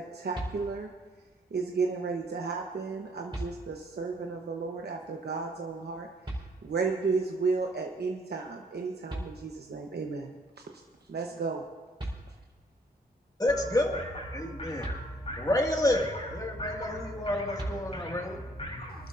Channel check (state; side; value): normal; both; correlation 0.63